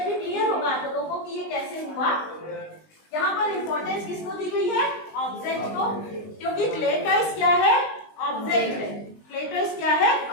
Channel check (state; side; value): late; right; 19 ms